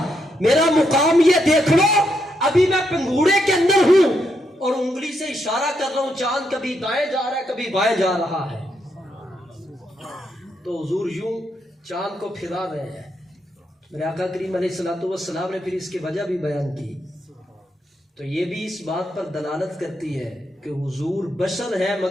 میرا مقام یہ دیکھ لو, ابھی میں پنگھوڑے کے اندر ہوں اور انگلی سے اشارہ کر رہا ہوں, چاند کبھی دائیں جا رہا ہے کبھی بائیں جا رہا ہے. تو حضور یوں چاند کو پھرا رہے ہیں. میرے آقا کریم علیہ الصلوۃ والسلام نے پھر اس کی وجہ بھی بیان کی. تو یہ بھی اس بات پر دلالت کرتی ہے کہ حضور بشر ہے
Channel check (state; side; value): normal; both; correlation 0.79